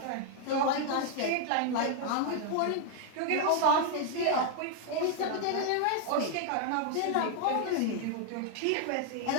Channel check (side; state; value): both; different; correlation 0.00